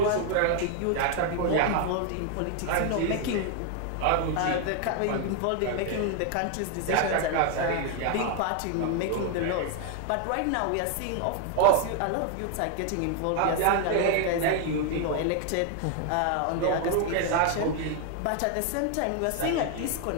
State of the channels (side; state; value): both; different; correlation 0.00